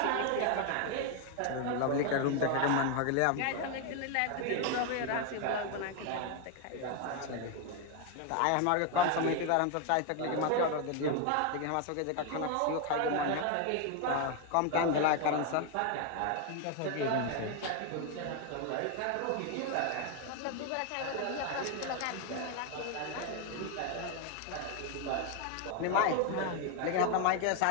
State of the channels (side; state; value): both; different; correlation 0.01